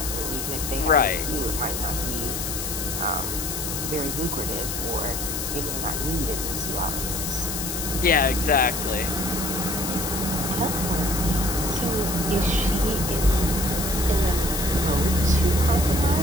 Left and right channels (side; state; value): left; noise; hiss, 4 dB below the sound